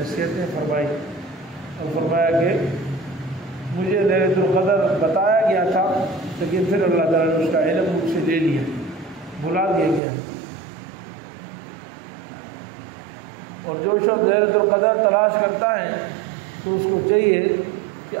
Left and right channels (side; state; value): left; drops out; at 10.0 s